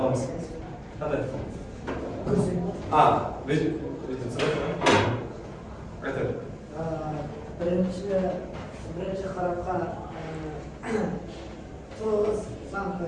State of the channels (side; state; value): both; identical; correlation 1.00